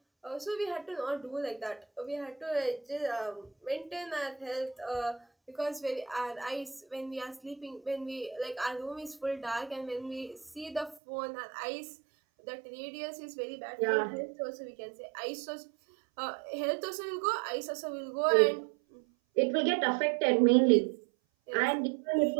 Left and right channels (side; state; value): left; drops out; at 11.0 s